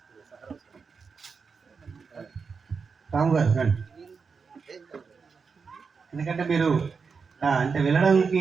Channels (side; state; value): left; quieter; 5.3 dB